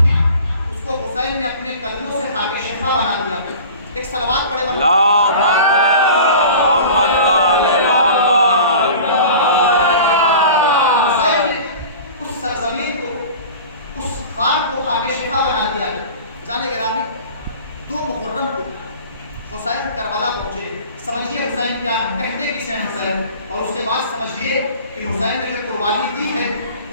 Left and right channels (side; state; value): both; inverted; correlation -0.40